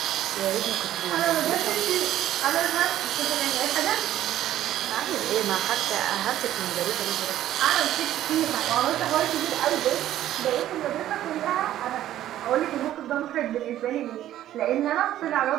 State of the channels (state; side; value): quieter; left; 12.7 dB